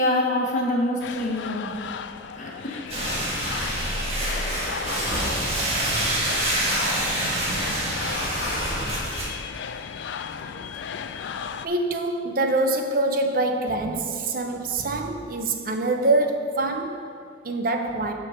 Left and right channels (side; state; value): both; normal; correlation 0.03